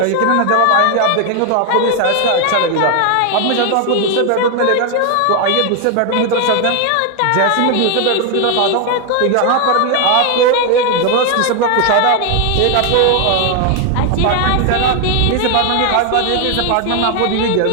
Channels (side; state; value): both; different; correlation 0.01